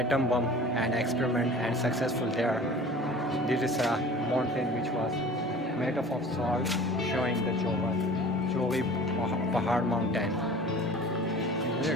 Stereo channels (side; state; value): both; normal; correlation 0.43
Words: bomb and experiment and successful there. This is a mountain which was made up of salt, showing the Chowai Pothohar mountain.